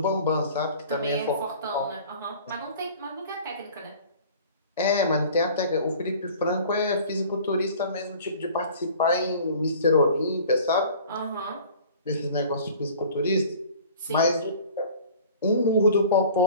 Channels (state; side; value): inverted; both; correlation -0.46